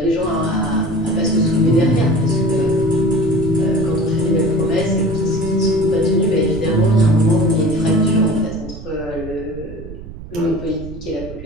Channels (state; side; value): noise; right; rumble, 13 dB below the sound